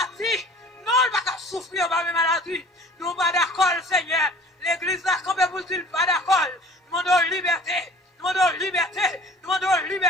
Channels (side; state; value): both; normal; correlation 0.48